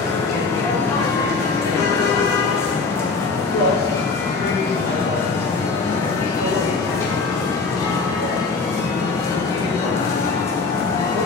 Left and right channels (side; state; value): right; quieter; 4.2 dB